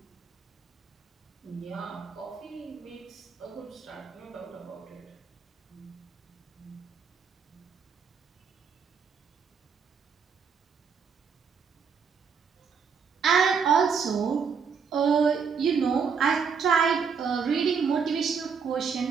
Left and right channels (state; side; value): quieter; left; 6.1 dB